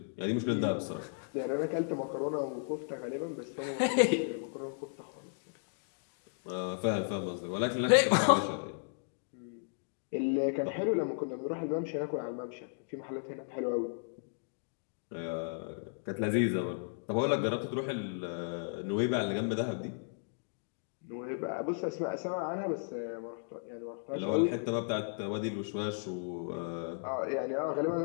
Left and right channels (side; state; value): right; silent; digital silence